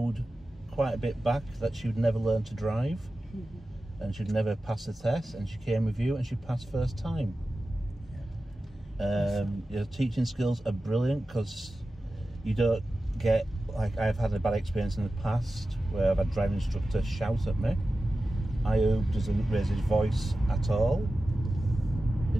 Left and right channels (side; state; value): both; normal; correlation 0.94